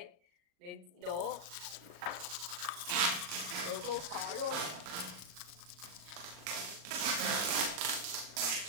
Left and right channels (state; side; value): late; left; 39 ms